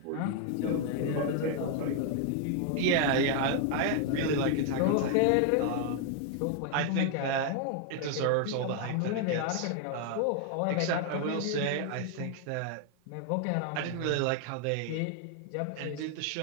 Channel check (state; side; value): different; both; correlation 0.00